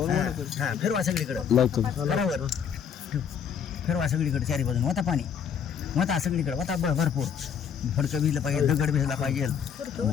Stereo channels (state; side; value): quieter; right; 7.6 dB